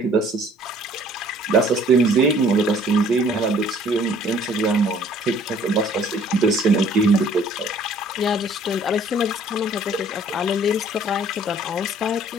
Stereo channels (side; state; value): both; normal; correlation 0.56